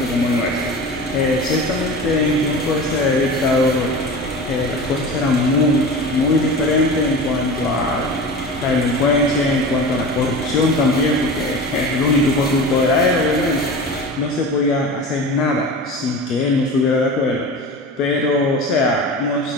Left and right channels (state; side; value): normal; both; correlation 0.32